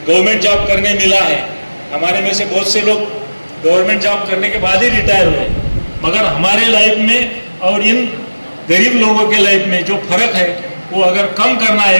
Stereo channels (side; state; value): both; inverted; correlation -1.00